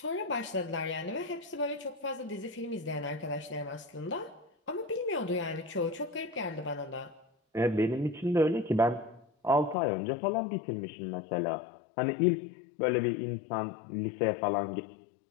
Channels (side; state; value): right; drops out; at 9.8 s